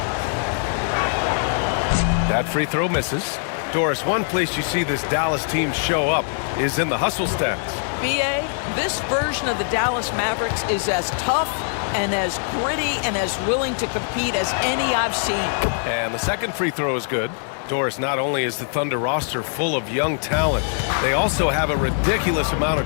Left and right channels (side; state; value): right; silent; 64 dB below the other